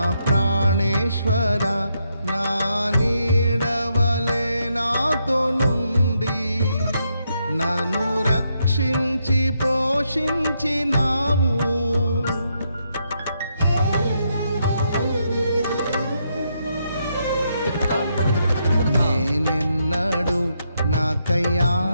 ప్రాణేశ్వర, నా నీడవలే నాతో నుండి నన్ను రక్షించి పోషించినావు. నేనెన్నడు నాకై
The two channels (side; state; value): both; inverted; correlation -0.79